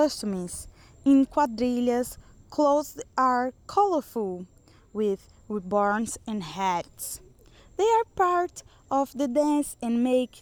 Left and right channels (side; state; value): both; identical; correlation 1.00